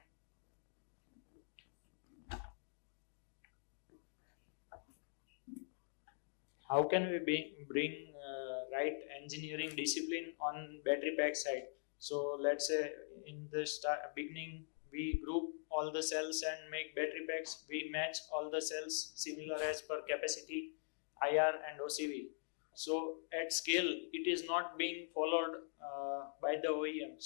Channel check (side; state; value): right; silent; digital silence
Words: How can we bring right engineering discipline on battery pack side? So let's say in the beginning we group all the cells and make battery packs. We match all the cells similar as per capacity, IR and OCV. So at scale it is not being followed by the